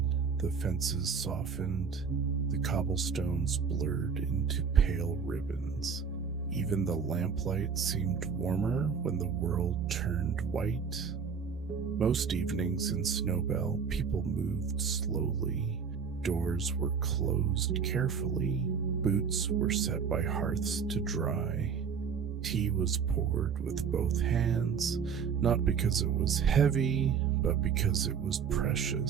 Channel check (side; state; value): left; quieter; 6.4 dB